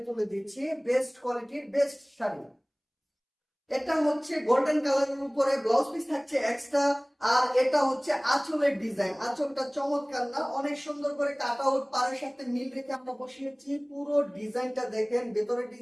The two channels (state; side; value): identical; both; correlation 1.00